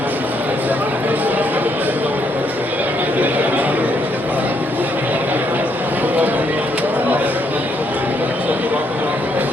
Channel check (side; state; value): both; normal; correlation 0.74